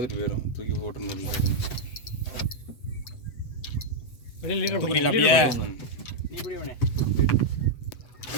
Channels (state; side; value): late; right; 8.0 ms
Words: போயிடும், தூக்கி போட்டுன்னு.